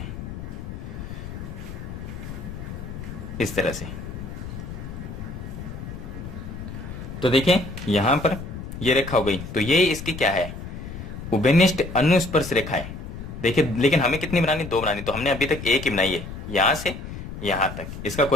इस तरह से। तो देखिए यहां पर ये रेखा हो गई, तो ये इसकी क्या है, उभयनिष्ठ अनुस्पर्श रेखा है। देखिए लेकिन हमें कितनी बनानी, 2 बनानी, तो हमने अभी तक एक ही बनाई है, यहां से यहां तक। इसका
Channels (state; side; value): noise; left; rumble, 9 dB below the sound